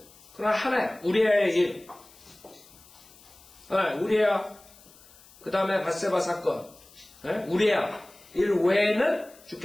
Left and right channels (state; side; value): noise; left; hiss, 24 dB below the sound